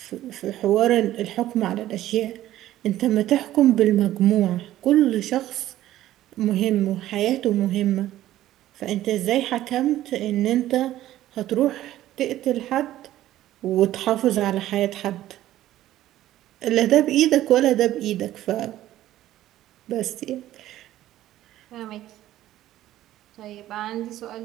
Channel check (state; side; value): quieter; left; 13.9 dB